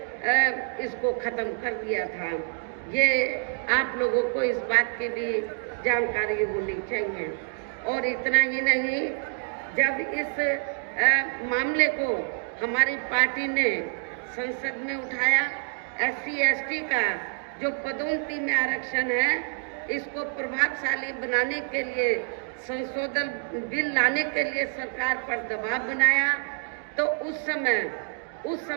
इसको खत्म कर दिया था। ये आप लोगों को इस बात की भी जानकारी होनी चाहिए। और इतना ही नहीं, जब इस मामले को हमारी पार्टी ने संसद में उठाया, SC ST का जो पदोन्नति में आरक्षण है इसको प्रभावशाली बनाने के लिए संशोधन बिल लाने के लिए सरकार पर दबाव बनाया, तो उस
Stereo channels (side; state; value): left; silent; 60 dB below the other